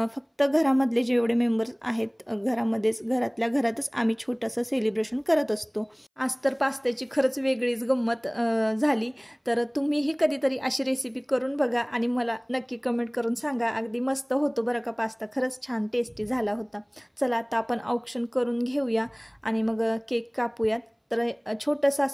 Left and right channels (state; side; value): identical; both; correlation 1.00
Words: फक्त घरामधले जेवढे मेंबर्स आहेत घरातल्या घरातच आम्ही छोटंसं सेलिब्रेशन करत असतो। आज तर पास्त्याची खरंच वेगळीच गंमत झाली। तर तुम्हीही कधीतरी अशी रेसिपी करून बघा आणि मला नक्की कमेंट करून सांगा, अगदी मस्त होतो बरं का पास्ता, खरंच छान टेस्टी झाला होता। चला आता आपण औक्षण करून घेऊया आणि मग केक कापूयात। तर छोटंसं